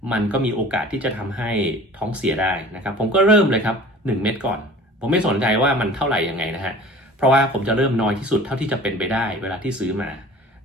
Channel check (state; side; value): normal; both; correlation 0.44